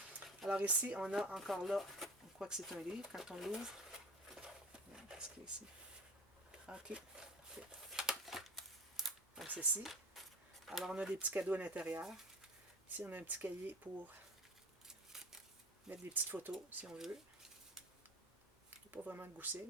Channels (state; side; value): normal; both; correlation 0.35